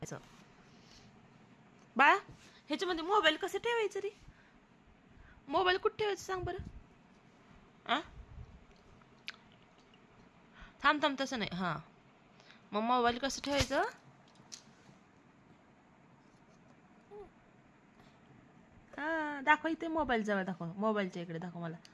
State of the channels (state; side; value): identical; both; correlation 1.00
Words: बाळा ह्याच्यामध्ये मोबाईल कसं ठेवायचं रे? मोबाईल कुठे ठेवायचं सांग बरं. आ थांब थांब तसं नाही. हा मग मोबाईल कसं ठेवायचं? हा दाखव इथे. मोबाईल जवळ दाखव. मोबाईलच्या इकडे दाखव मला.